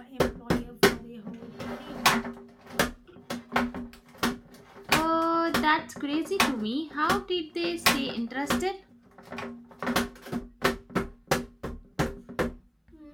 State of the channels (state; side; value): identical; both; correlation 1.00